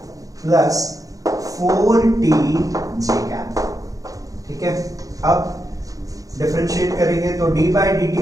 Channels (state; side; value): late; left; 0.17 ms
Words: plus 4t j cap. ठीक है, अब डिफरेंशिएट करेंगे तो d by